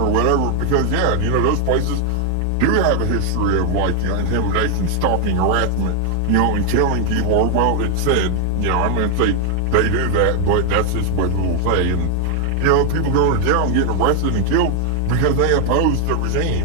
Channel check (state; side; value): different; both; correlation 0.00